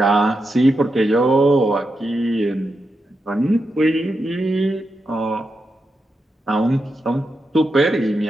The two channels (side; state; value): both; normal; correlation 0.87